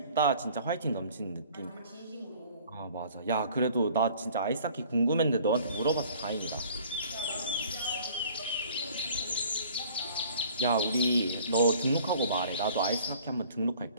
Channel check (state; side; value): inverted; both; correlation -0.51